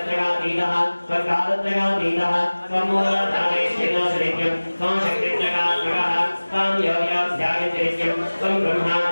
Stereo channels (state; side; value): inverted; both; correlation -1.00